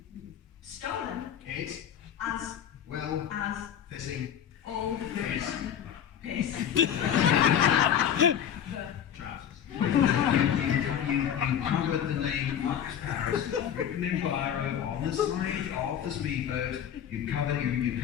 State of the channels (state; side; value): quieter; right; 9.3 dB